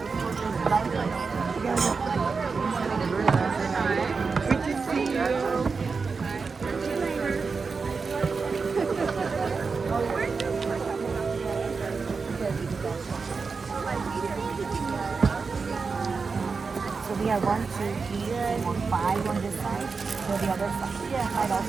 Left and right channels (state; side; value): quieter; left; 4.8 dB